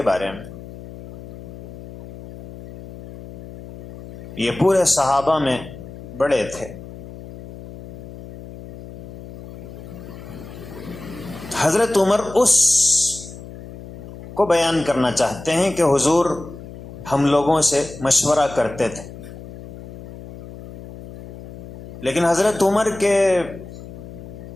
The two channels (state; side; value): noise; left; hum, 14 dB below the sound